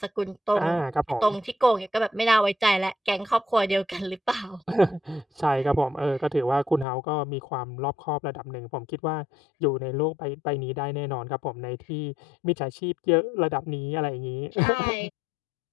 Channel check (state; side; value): drops out; right; at 6.9 s